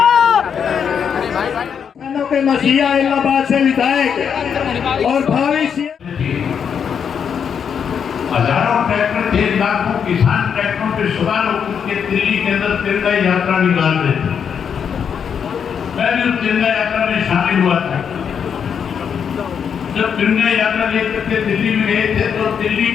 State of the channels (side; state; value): right; quieter; 7.4 dB